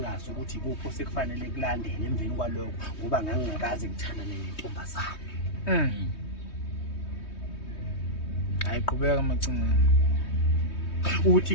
ukuthi ikuphi osekufanele kulandele emveni kwalokho ngoba ngangingakaze ngithandane nentombazane. Ayiqhubeka macingana. Uthi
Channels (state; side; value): late; right; 3.2 ms